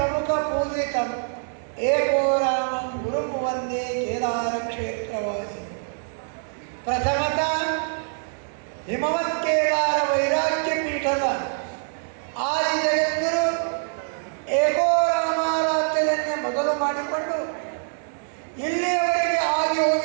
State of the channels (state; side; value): silent; left; digital silence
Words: ಪೂಜಿತಂ ಏಕೋ ರಾಮಂ ಗುರುಂ ವಂದೇ ಕೇದಾರ ಕ್ಷೇತ್ರವಾಸಿ. ಪ್ರಥಮತಃ ಹಿಮವತ್ ಕೇದಾರ ವೈರಾಗ್ಯ ಪೀಠದ ಆದಿ ಜಗದ್ಗುರು ಏಕೋ ರಾಮಾರಾಧ್ಯದನ್ನೇ ಮೊದಲು ಮಾಡಿಕೊಂಡು ಇಲ್ಲಿಯವರೆಗೆ ಆಗಿ